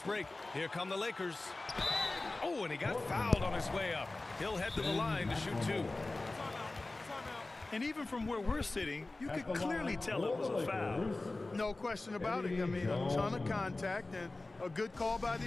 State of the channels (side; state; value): right; quieter; 3.1 dB